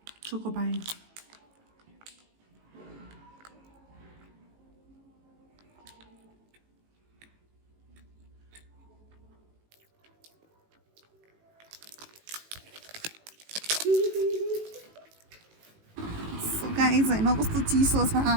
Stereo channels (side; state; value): left; late; 18 ms